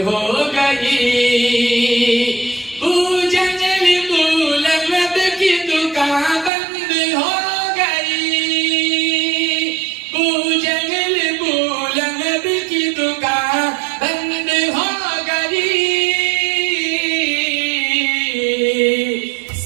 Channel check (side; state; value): left; drops out; at 6.5 s